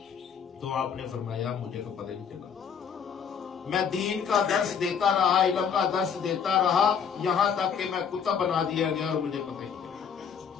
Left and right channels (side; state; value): right; quieter; 7.1 dB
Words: تو آپ نے فرمایا مجھے تو پتہ نہیں چلا، میں دین کا درس دیتا رہا، علم کا درس دیتا رہا، یہاں تک کہ میں قطب بنا دیا گیا اور مجھے پتہ ہی نہیں چلا۔